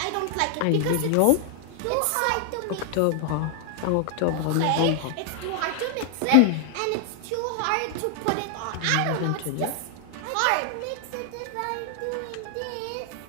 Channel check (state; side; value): different; both; correlation 0.00